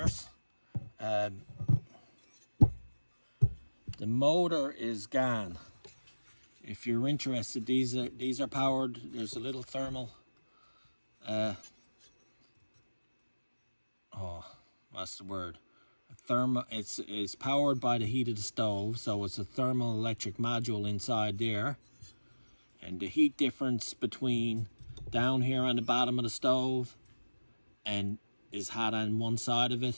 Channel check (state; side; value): inverted; both; correlation -1.00